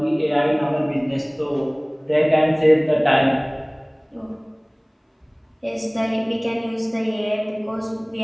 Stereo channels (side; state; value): both; identical; correlation 1.00